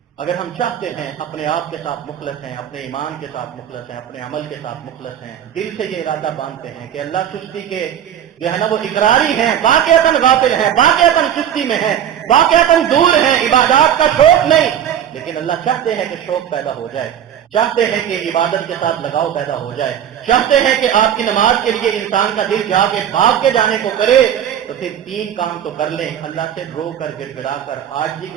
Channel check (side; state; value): left; quieter; 9.9 dB